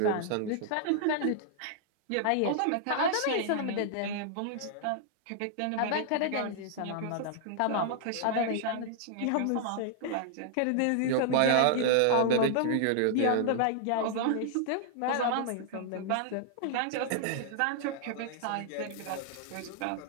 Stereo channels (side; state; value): both; different; correlation -0.01